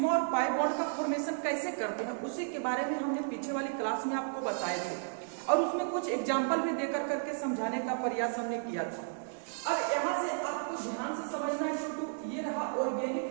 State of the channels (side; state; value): left; silent; digital silence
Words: और पाई बॉन्ड का फॉर्मेशन कैसे करते हैं, उसी के बारे में हमने पीछे वाली क्लास में आपको बताए थे और उसमें कुछ एग्जाम्पल भी देकर करके समझाने का प्रयास हमने किया था। अब यहाँ से आपको ध्यान से समझना है छोटू, ये रहा